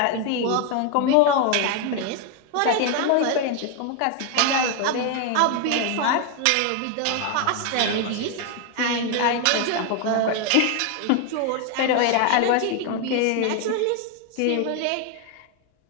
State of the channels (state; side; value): different; both; correlation 0.01